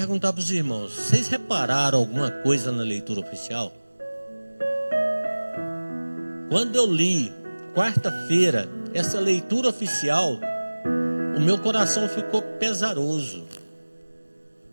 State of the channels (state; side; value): inverted; both; correlation -1.00